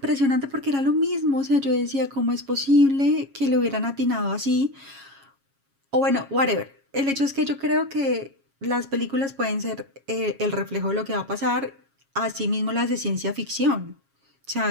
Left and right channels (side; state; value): left; late; 7.3 ms